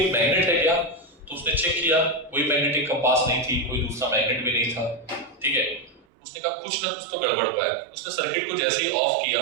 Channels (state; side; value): drops out; left; at 6.1 s